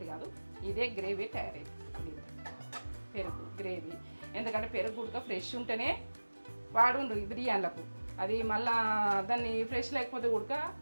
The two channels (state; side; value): inverted; both; correlation -1.00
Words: కాదు. ఇదే గ్రేవీ తయారైంది దీంతో. పెరుగు గ్రేవీ, ఎందుకంటే పెరుగు ఉడక ఫ్రెష్ ఉంటేనే వాడుండ్రు ఈ బిర్యానీలకు. అది మళ్ళా దాన్ని ఫ్రెష్ లేకపోతే ఉడక